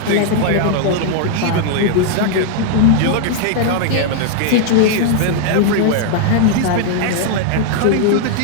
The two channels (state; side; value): different; both; correlation 0.00